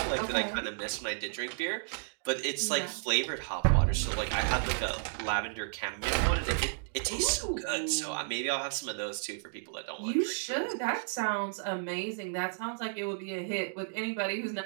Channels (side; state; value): left; silent; digital silence